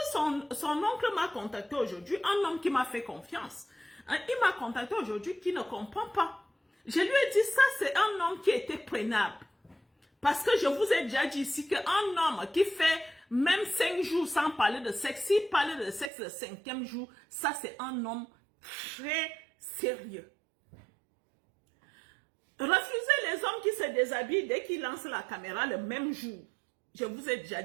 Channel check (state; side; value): drops out; left; at 16.1 s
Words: son oncle m'a contacté aujourd'hui, un homme qui m'a fait confiance. Il m'a contacté aujourd'hui qui ne comprend pas. Je lui ai dit, ça c'est un homme qui était prenable. Parce que je vous ai déjà dit ici qu'un homme qui fait même 5 jours sans parler de sexe, s'il parlait de sexe le 5e jour, ça c'est un homme très sérieux. Refusez les hommes qui se déshabillent dès qu'ils lancent la caméra le même jour. Je vous ai déjà